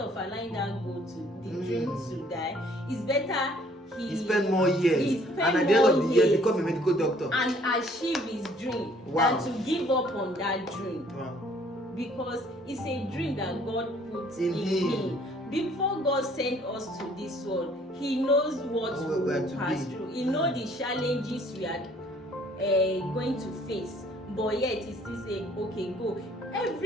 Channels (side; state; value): both; normal; correlation 0.59